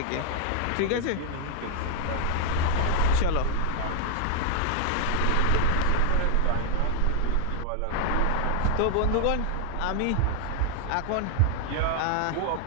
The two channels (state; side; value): different; both; correlation 0.00